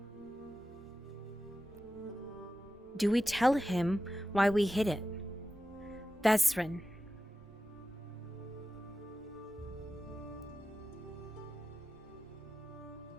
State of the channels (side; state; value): both; normal; correlation 0.93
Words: Do we tell him why we hid it? Vesrin.